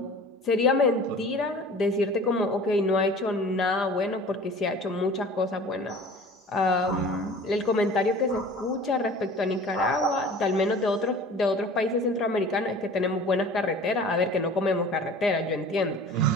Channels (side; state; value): both; normal; correlation 0.43